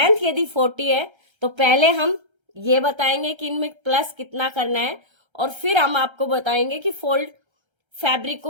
यदि 40 है तो पहले हम ये बताएंगे कि इनमें प्लस कितना करना है और फिर हम आपको बताएंगे कि फोल्ड, फैब्रिक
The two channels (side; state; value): left; late; 1.3 ms